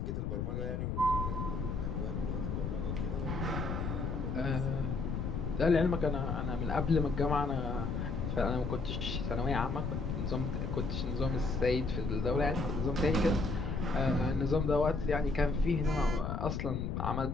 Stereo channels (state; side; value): noise; left; rumble, 2 dB below the sound